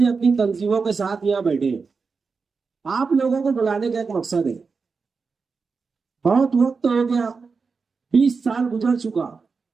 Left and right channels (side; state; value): left; quieter; 4.9 dB